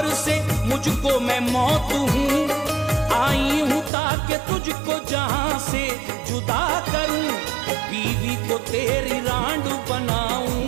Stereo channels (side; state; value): left; drops out; at 3.9 s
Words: से मुझको मैं मौत हूँ, आई हूँ ताकि तुझको जहां से जुदा करूं, बीवी को तेरी रांड